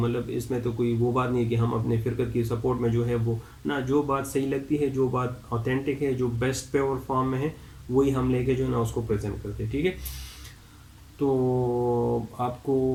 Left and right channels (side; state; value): both; identical; correlation 1.00